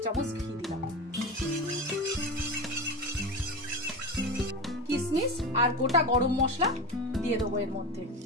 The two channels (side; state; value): both; normal; correlation 0.24